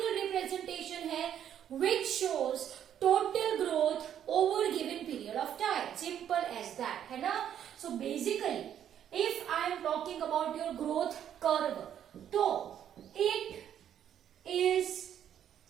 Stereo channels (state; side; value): quieter; left; 9.9 dB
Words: representation है which shows total growth over given period of time. Simple as that, है ना? So basically, if I am talking about your growth curve, तो it is